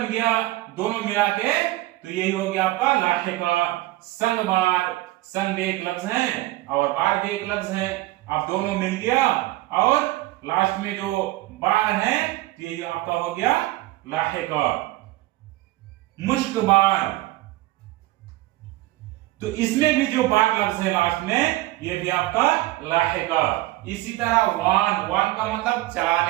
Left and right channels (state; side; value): quieter; left; 18.2 dB